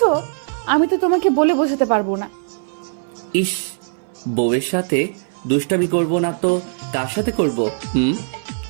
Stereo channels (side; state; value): left; silent; 61 dB below the other